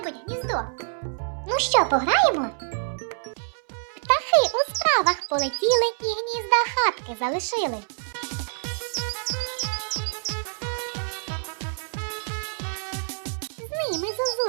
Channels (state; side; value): silent; left; 61 dB below the other